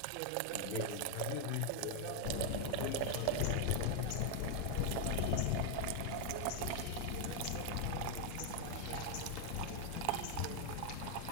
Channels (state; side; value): different; both; correlation 0.00